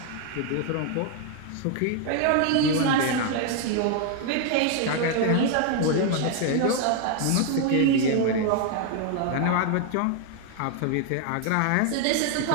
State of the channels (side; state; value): both; different; correlation 0.00